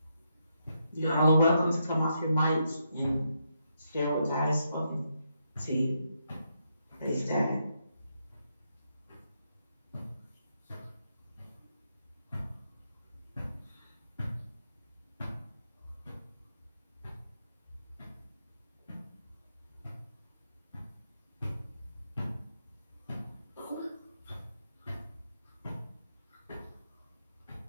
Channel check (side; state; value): both; inverted; correlation -0.81